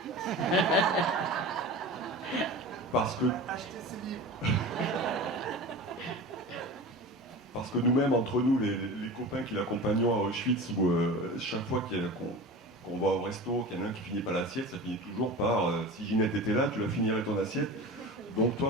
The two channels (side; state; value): both; normal; correlation 0.33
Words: Parce que... Acheter ses livres. Parce que nous-mêmes, entre nous, les copains qui l'accompagnons à Auschwitz, où chaque fois qu'on va au resto, qu'il y en a un qui finit pas l'assiette, ça finit toujours par si Ginette était là, tu la finirais ton assiette. Donc toi,